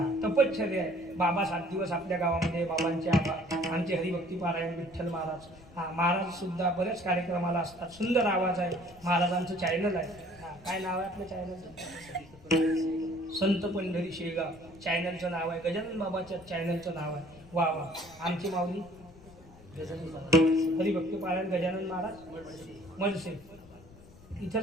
तपश्चर्या आहे. बाबा 7 दिवस आपल्या गावामध्ये बाबांचे आमचे हरिभक्ती पारायण. विठ्ठल महाराज महाराज सुद्धा बऱ्याच कार्यक्रमाला असतात. सुंदर आवाज आहे. महाराजांचं चॅनल आहे. काय नाव आहे आपल्या चॅनलचं? संत पंढरी शेगाव चॅनलचं नाव आहे. गजानन बाबाच्या चॅनलचं नाव आहे. वा वा. आमची माऊली हरिभक्ती पारायण गजानन महाराज मडसे.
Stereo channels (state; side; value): noise; left; rumble, 22 dB below the sound